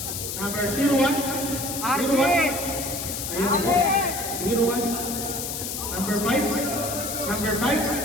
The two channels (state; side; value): noise; left; hiss, 5 dB below the sound